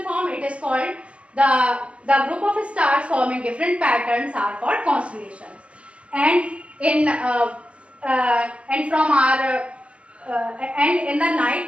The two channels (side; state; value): left; late; 0.061 ms